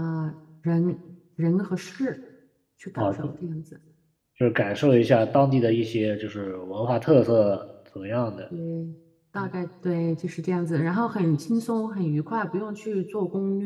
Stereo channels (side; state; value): both; identical; correlation 1.00